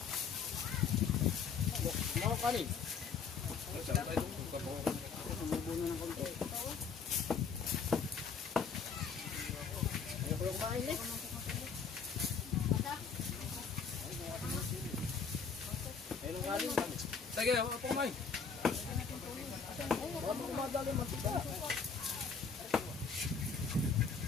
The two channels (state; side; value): quieter; right; 5.7 dB